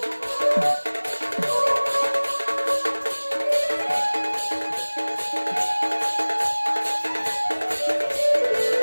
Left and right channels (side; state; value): both; inverted; correlation -1.00